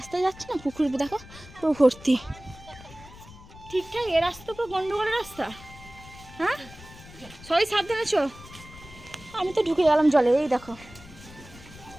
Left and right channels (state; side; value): noise; left; rumble, 19 dB below the sound